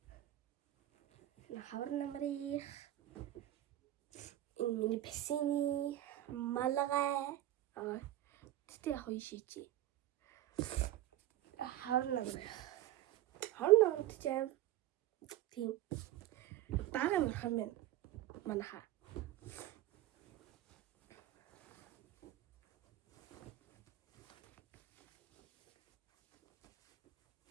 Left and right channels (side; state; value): left; quieter; 14.3 dB